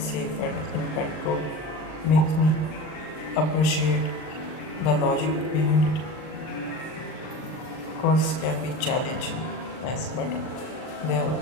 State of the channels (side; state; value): right; late; 39 ms